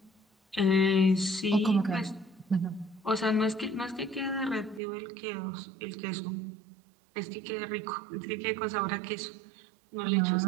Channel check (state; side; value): drops out; left; at 4.8 s